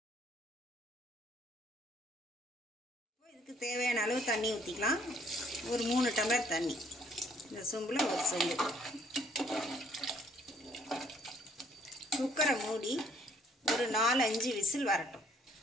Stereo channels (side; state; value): both; normal; correlation 0.63